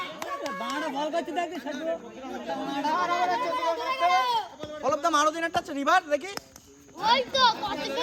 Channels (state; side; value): identical; both; correlation 1.00